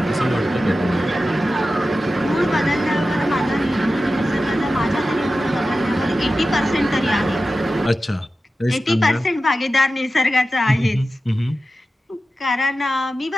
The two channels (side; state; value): both; normal; correlation 0.93